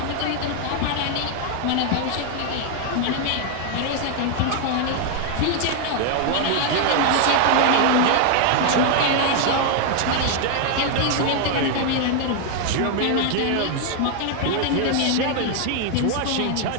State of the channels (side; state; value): both; different; correlation 0.00